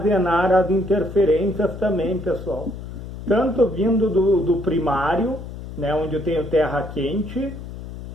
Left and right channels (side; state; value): left; noise; hum, 11 dB below the sound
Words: as interferências também, pessoal. Tanto vindo do primário, né, onde eu tenho terra quente,